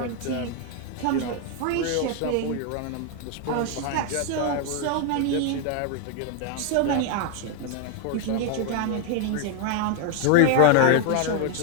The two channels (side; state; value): both; different; correlation 0.01